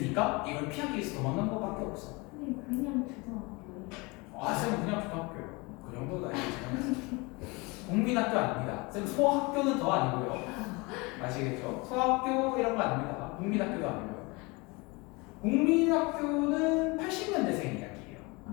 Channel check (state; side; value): quieter; right; 26.3 dB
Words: 이걸 피하기 위해서 도망간 것밖에 없어. 그냥 초등학교. 쌤은 그냥 초등학교예요. 그 정도도 아니고 국민학교 아닙니다. 쌤 소학교는 더 아니고요. 아시겠죠? 소학교 이런 거 아닙니다. 국민학교도 아니고요. 국민학교는 80년대생 이야기예요.